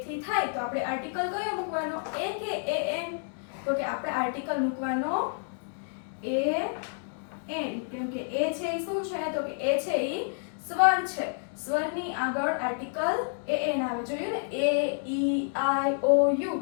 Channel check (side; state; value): right; silent; digital silence